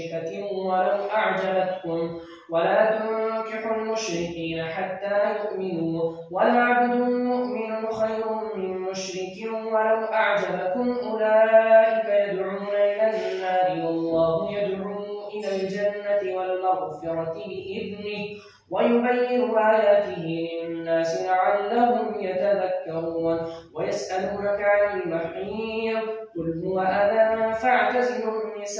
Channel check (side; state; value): both; identical; correlation 1.00